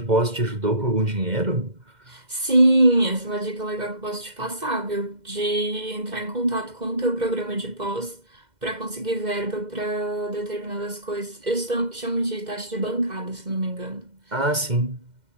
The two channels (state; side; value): late; left; 2.1 ms